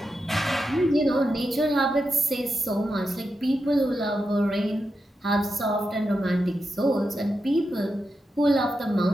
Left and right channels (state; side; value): normal; both; correlation 0.88